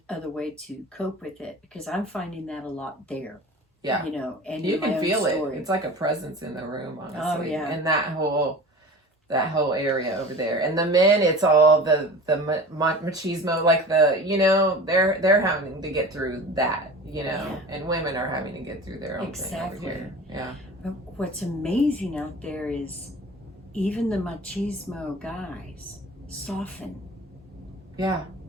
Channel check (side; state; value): both; normal; correlation 0.37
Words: other way to cope with it, because I'm finding that a lot there. Yeah. You know, and you can feel it. It's like a presence in the room, honestly. Oh, yeah. And that whole area over there. And the men, it's all the machismo, like the, you know, they're having to get through that, you know, and women are having to get through their own thing over here. Yeah. But what's amazing out there is even the machismo guys soften. Yeah,